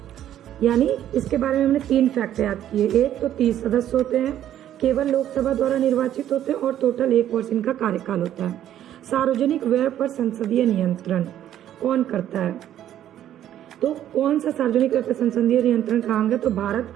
यानी इसके बारे में हमने 3 फैक्ट याद किए। एक तो 30 सदस्य होते हैं, केवल लोकसभा द्वारा निर्वाचित होते हैं और टोटल 1 वर्ष इनका कार्यकाल होता है। सार्वजनिक व्यय पर संसदीय नियंत्रण कौन करता है? तो कौन सा सार्वजनिक व्यय पर संसदीय नियंत्रण का अंग है? तो भारत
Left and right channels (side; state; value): left; quieter; 11.4 dB